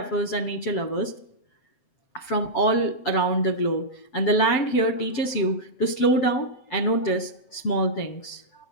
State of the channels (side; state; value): right; late; 7.8 ms